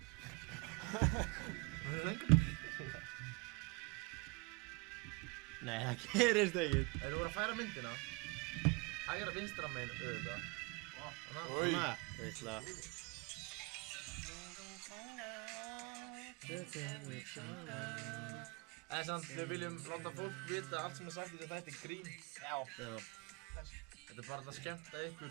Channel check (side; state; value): left; quieter; 29.6 dB